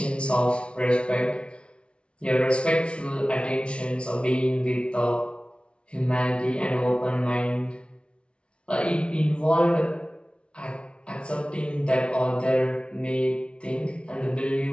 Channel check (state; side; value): late; right; 0.059 ms